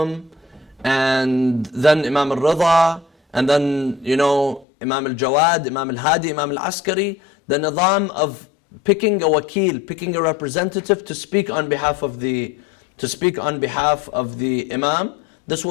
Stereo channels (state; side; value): drops out; right; at 4.7 s